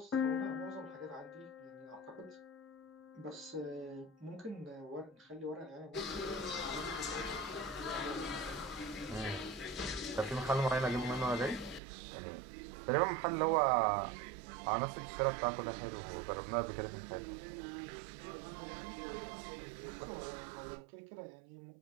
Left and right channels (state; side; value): drops out; left; at 11.8 s